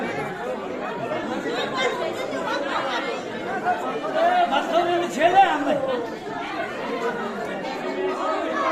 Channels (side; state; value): both; identical; correlation 1.00